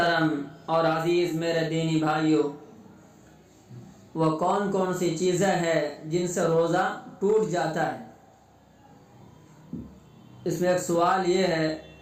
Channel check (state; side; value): identical; both; correlation 1.00